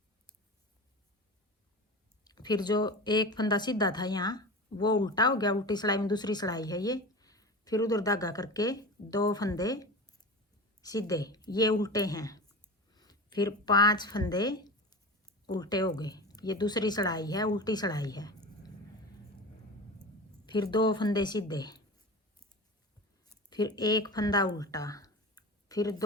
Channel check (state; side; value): normal; both; correlation 0.30